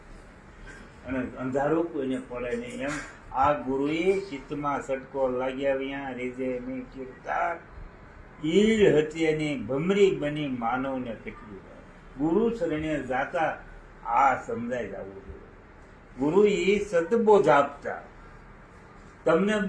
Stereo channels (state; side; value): identical; both; correlation 1.00